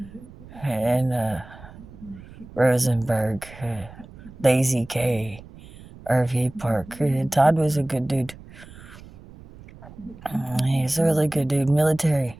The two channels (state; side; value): noise; right; rumble, 19 dB below the sound